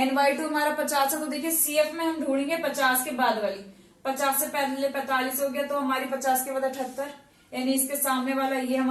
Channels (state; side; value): identical; both; correlation 1.00